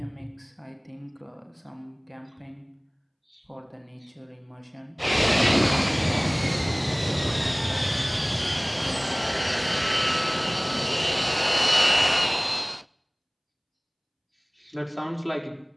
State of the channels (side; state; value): both; identical; correlation 1.00